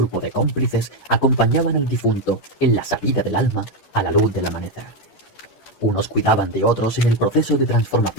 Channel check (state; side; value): late; right; 11 ms